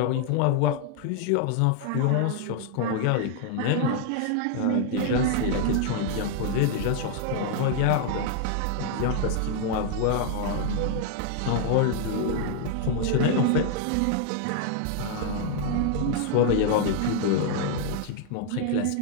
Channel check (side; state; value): both; different; correlation 0.00